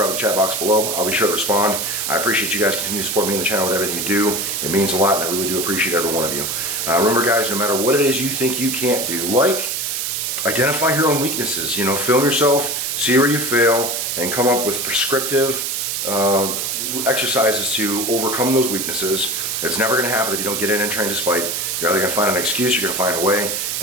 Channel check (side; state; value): right; noise; hiss, 1 dB below the sound